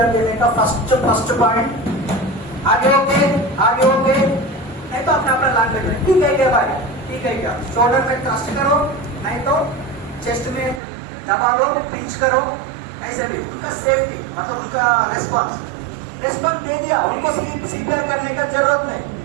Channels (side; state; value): left; drops out; at 10.8 s